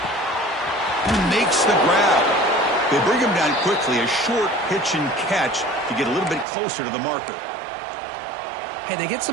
He makes the grab. They bring him down quickly. A short pitch and catch to get a little bit closer to the marker. Hey, they get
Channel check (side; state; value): left; drops out; at 6.5 s